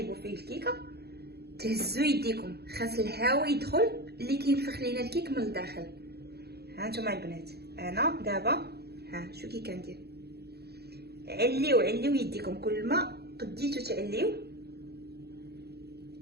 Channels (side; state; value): left; late; 0.47 ms